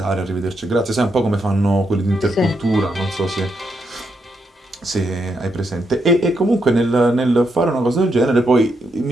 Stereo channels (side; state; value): both; normal; correlation 0.80